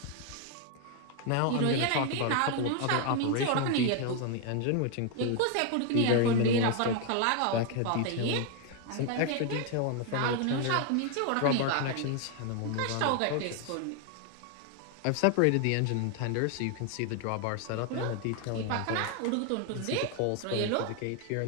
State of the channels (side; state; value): both; different; correlation 0.00